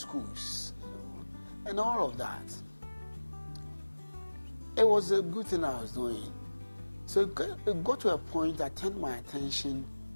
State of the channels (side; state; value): both; inverted; correlation -1.00